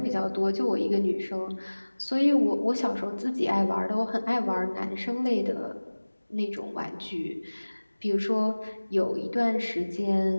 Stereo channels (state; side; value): inverted; both; correlation -1.00